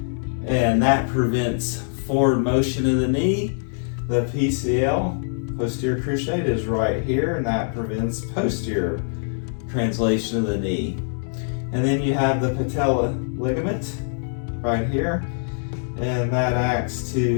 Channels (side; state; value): right; silent; digital silence